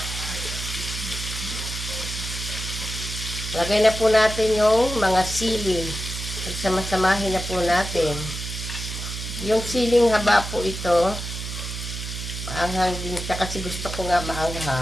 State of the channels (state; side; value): noise; right; hum, 6 dB below the sound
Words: Lagay na po natin yung mga sili. Pagsama-samahin na po natin. Yung siling haba po ito. Maanghang din siya kasi gusto ko nga